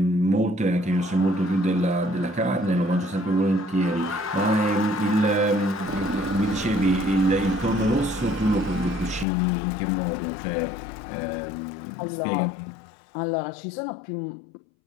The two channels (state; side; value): drops out; right; at 9.2 s